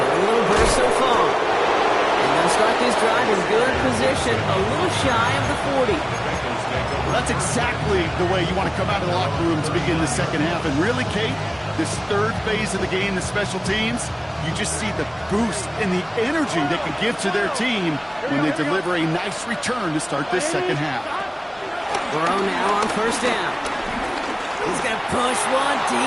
a little burst so far. And they'll start this drive in good position, a little shy of the 40. Well, that's exactly the way you want to come out of the locker room to begin the second half. And really, Kate, this third phase of the game, the special teams, you just see the boost and the energy they can give to their team when they deliver a nice return to start this second half. Burrow now on first down. He's going to push one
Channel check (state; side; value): identical; both; correlation 1.00